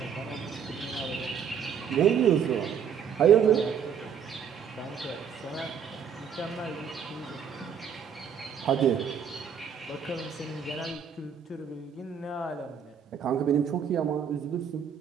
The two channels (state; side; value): quieter; left; 7.5 dB